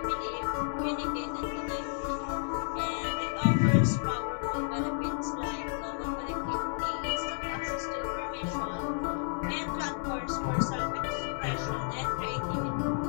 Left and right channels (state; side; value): silent; right; digital silence